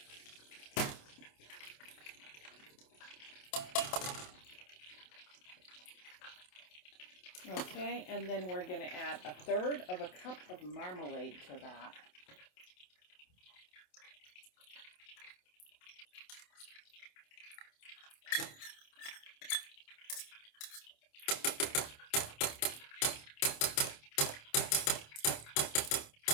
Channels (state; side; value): late; right; 27 ms